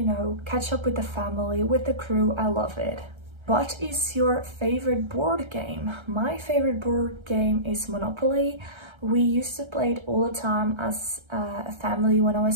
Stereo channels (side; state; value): left; late; 1.3 ms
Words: catch up with the family, with the crew. I love it. What is your favorite board game? My favorite board game is Monopoly. We used to play it all the time as a family when I